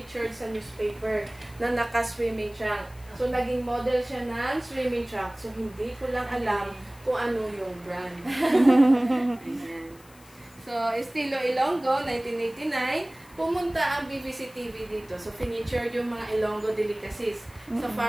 sa newspaper na naka-swimming trunk. So, naging model siya ng swimming trunk. So, hindi ko lang alam kung ano yung brand. Ayan. So, Estilo Ilonggo, 1989, pumunta ang BBC TV dito. So, featured yung mga Ilonggo delicacies sa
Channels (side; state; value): left; noise; hiss, 25 dB below the sound